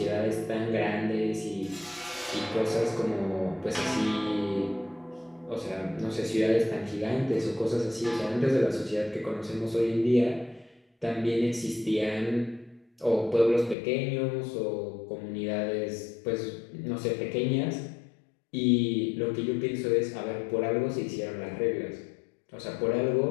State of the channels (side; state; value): right; drops out; at 13.8 s